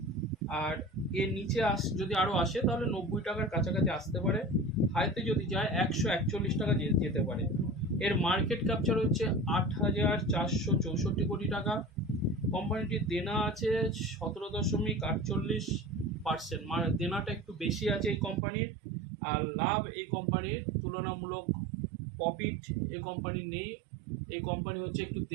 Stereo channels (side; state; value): left; drops out; at 18.4 s